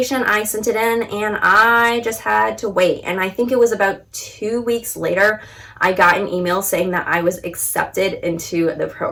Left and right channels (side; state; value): both; identical; correlation 1.00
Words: I sent it in, and I just had to wait. And I think it was about 2 weeks later, I got an email saying that I was accepted into the